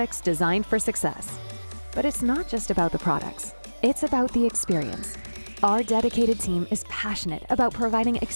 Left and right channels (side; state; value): both; inverted; correlation -1.00